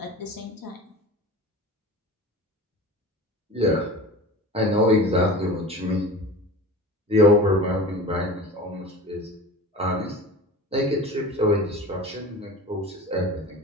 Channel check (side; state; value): both; normal; correlation 0.34